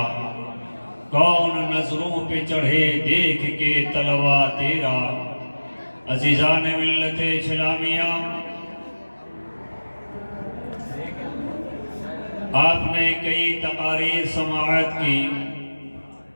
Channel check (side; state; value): both; inverted; correlation -1.00